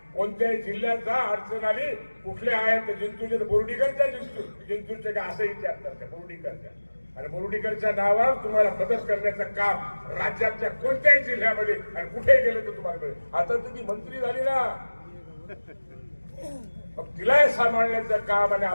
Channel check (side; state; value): both; inverted; correlation -1.00